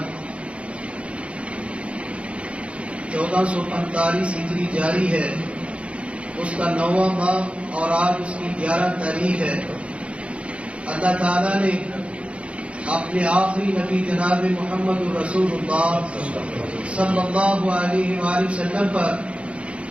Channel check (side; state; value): left; late; 0.061 ms